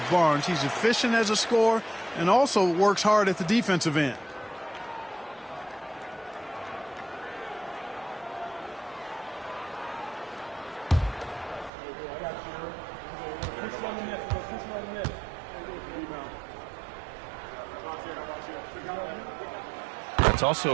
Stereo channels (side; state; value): left; drops out; at 11.7 s